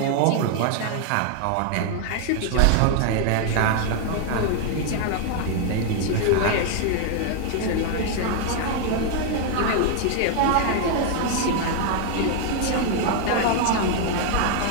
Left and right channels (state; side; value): different; both; correlation 0.00